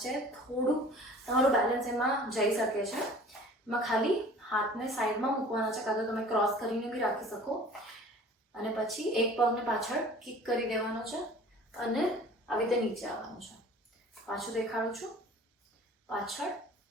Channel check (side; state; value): both; normal; correlation 0.46